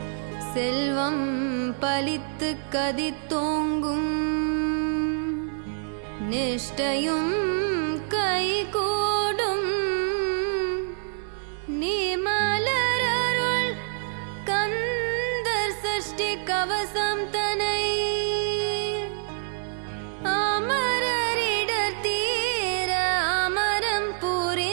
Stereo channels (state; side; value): silent; left; digital silence